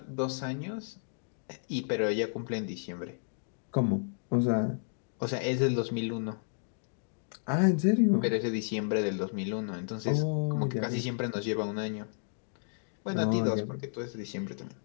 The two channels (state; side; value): silent; right; digital silence